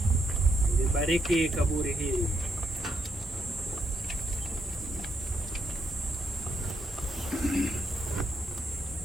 libariki kaburi hili.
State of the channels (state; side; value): normal; both; correlation 0.77